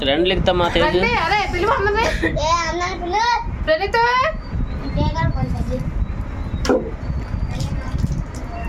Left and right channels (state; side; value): identical; both; correlation 1.00